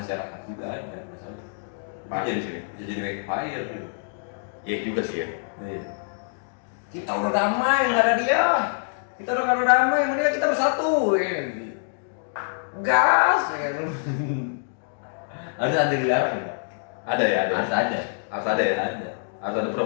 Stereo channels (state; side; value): silent; right; digital silence